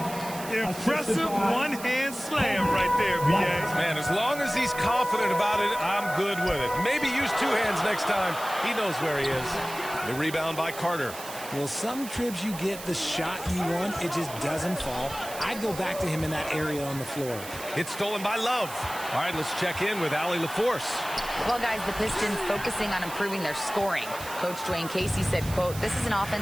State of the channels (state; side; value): noise; right; hiss, 12 dB below the sound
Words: Impressive one-hand slam right there, B.A. Man, as long as he's confident about it, I'm good with it. Maybe use 2 hands next time. He knows where he is. The rebound by Carter. Well, some trips you get the shot you want, it just doesn't fall. I'd go back to him in that area on the floor. It's stolen by Love. All right, let's check in with Allie LaForce. Well, guys, the Pistons focusing on improving their scoring. Coach Dwayne Casey said, quote, "This is an